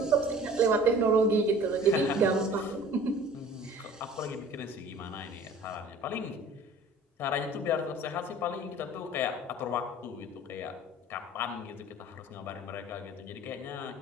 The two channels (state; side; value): normal; both; correlation 0.46